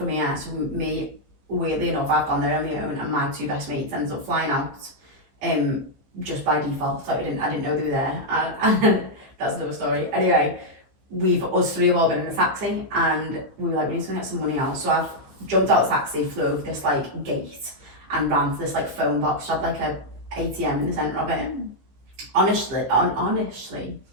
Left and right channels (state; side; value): late; left; 15 ms